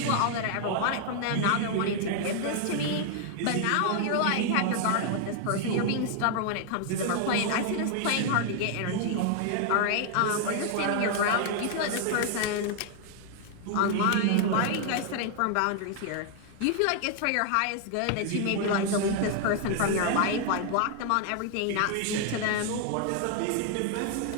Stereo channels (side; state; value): both; different; correlation 0.00